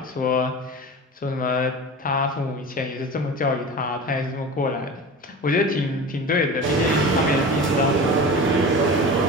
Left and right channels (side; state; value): both; normal; correlation 0.33